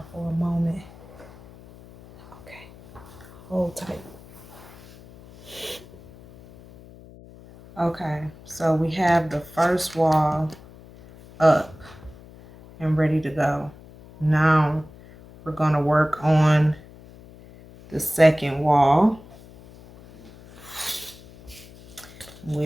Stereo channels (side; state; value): left; noise; hum, 21 dB below the sound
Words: for a moment. Okay. Hold tight. Okay, so we have the first wall up and ready to go. Now we're going to work on the second wall.